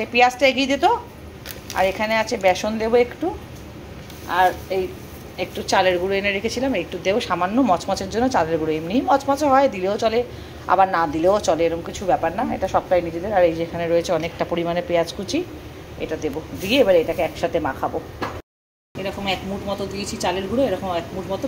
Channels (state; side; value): identical; both; correlation 1.00